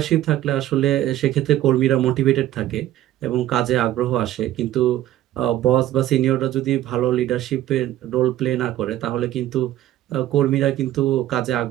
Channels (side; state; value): left; quieter; 13.6 dB